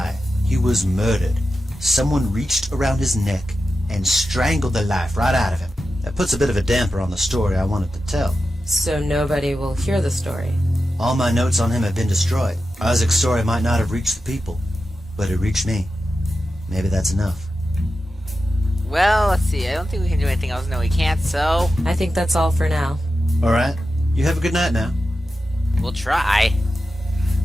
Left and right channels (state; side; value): normal; both; correlation 0.91